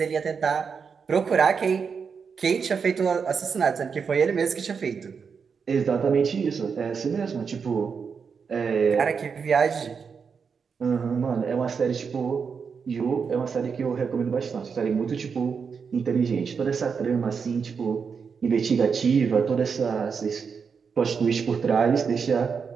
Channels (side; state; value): left; quieter; 5.9 dB